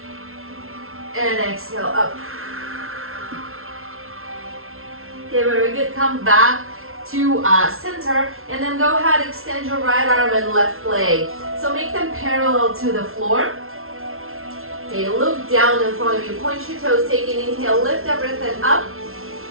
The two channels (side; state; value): left; late; 0.62 ms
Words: And exhale, up. Okay, very good. Come back to center, and then go ahead, extend your right arm and left leg. So make them parallel to the floor. Okay, look down in front of you. Point your toes, take an inhale, lift everything up.